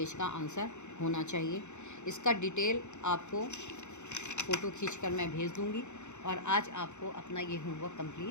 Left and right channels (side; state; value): right; late; 0.83 ms